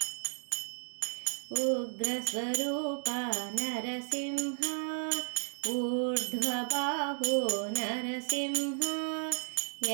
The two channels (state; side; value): silent; left; digital silence